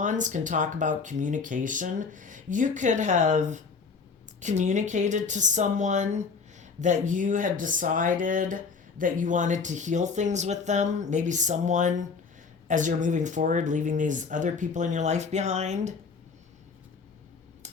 can talk about communication. You could have communicated to someone that you had decided that you wanted to heal things with them. Maybe someone, as you're moving forward, leaving these other people in your life behind.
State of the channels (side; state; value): right; quieter; 5.1 dB